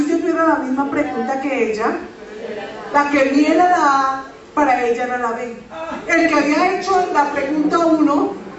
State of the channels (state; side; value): identical; both; correlation 1.00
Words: yo tuviera la misma pregunta que ella, la que vi era la A, para ella era la B. El que había hecho la pregunta 1,